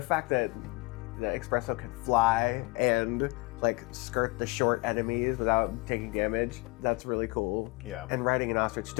fact that the espresso can fly and like skirt the short enemies without taking damage, that's really cool. Yeah. And riding an ostrich,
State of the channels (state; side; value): quieter; right; 25.2 dB